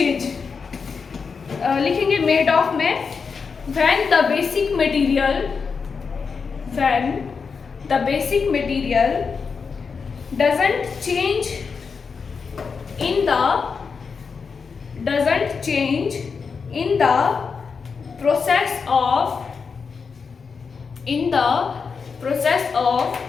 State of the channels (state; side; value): quieter; right; 5.4 dB